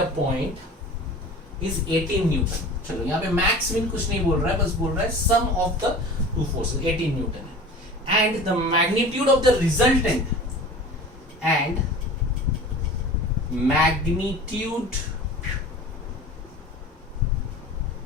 point is 18 newton. चलो यहां पे max min कुछ नहीं बोल रहा है, बस बोल रहा है sum of the two forces 18 newton है, and the magnitude of the resultant and magnitude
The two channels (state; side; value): normal; both; correlation 0.39